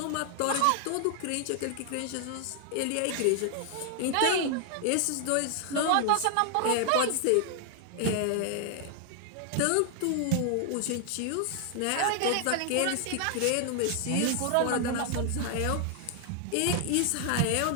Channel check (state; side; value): different; both; correlation 0.00